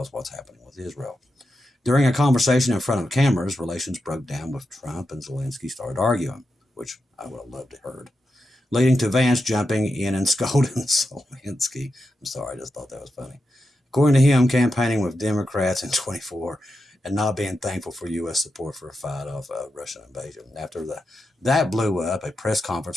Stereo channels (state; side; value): normal; both; correlation 0.88